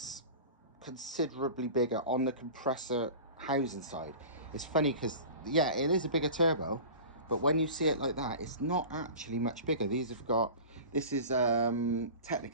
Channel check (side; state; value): both; inverted; correlation -0.36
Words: considerably bigger on the compressor housing side. It's funny because, yeah, it is a bigger turbo, but when you see it like that, it's not actually much bigger. These have got, this is